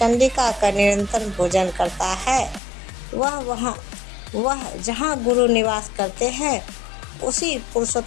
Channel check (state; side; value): drops out; right; at 2.6 s